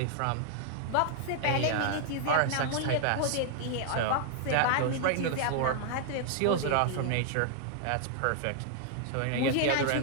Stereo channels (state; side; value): different; both; correlation -0.01